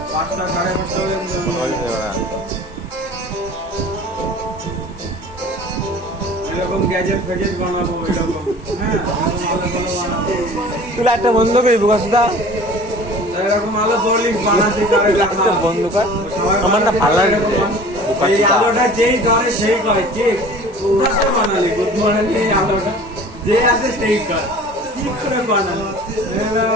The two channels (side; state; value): both; normal; correlation 0.44